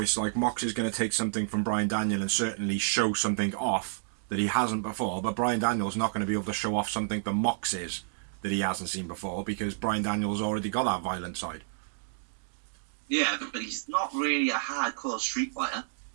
like Mox is going to take something from Brian Daniel and certainly show something off that he hasn't before, but Brian Daniel's not going to be able to show off something that Mox is that he hasn't seen before because Brian Daniel's already got that violent side. Yeah, but he's not really a hardcore street fighter.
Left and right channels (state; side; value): silent; left; digital silence